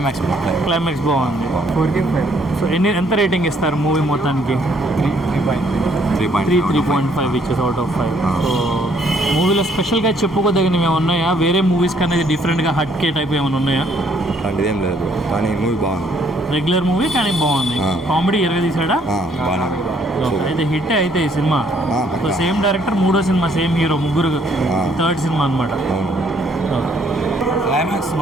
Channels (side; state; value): both; normal; correlation 0.66